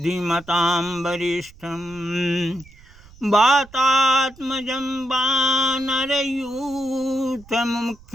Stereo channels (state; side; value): noise; right; rumble, 23 dB below the sound